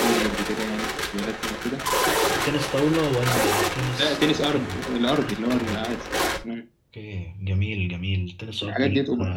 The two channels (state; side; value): identical; both; correlation 1.00